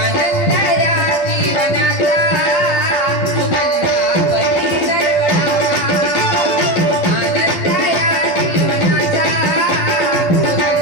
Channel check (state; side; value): late; right; 12 ms